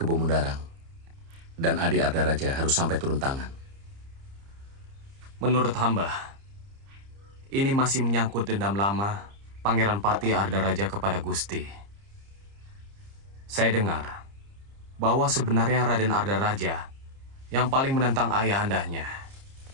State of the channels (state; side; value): late; left; 30 ms